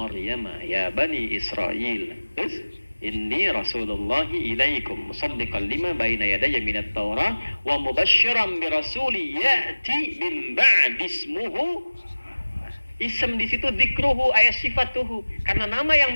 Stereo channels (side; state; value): both; inverted; correlation -1.00